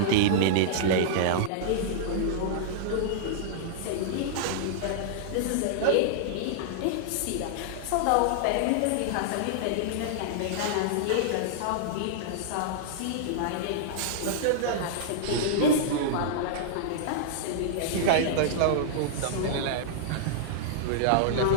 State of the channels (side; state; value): both; different; correlation -0.02